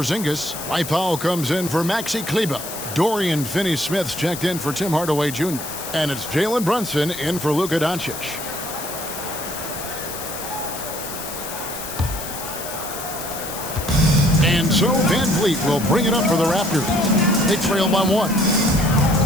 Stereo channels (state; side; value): noise; left; hiss, 9 dB below the sound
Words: Mike Powell comes in for Maxi Kleber. Dorian Finney-Smith's checked in for Tim Hardaway Jr. And it's Jalen Brunson in for Luka Doncic. And so VanVleet will bring it up for the Raptors. They trail by 1.